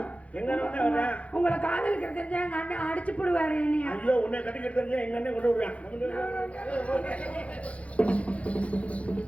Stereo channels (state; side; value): late; right; 0.064 ms